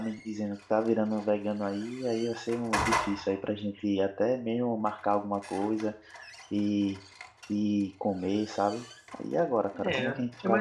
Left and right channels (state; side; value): identical; both; correlation 1.00